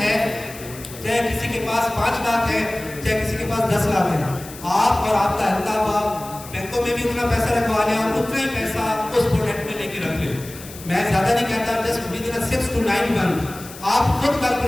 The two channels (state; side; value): noise; left; hiss, 16 dB below the sound